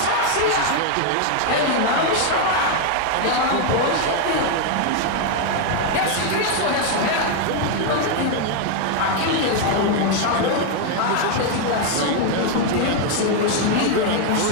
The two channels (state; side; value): different; both; correlation 0.00